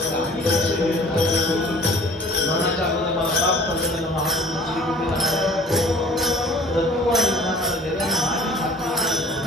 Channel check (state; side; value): normal; both; correlation 0.49